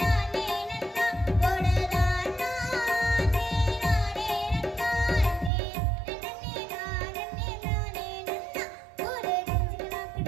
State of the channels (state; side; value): drops out; left; at 5.5 s